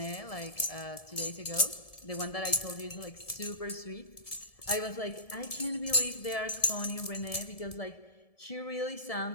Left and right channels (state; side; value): late; right; 1.7 ms